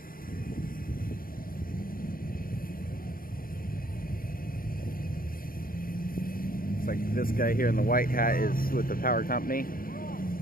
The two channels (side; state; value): right; late; 0.42 ms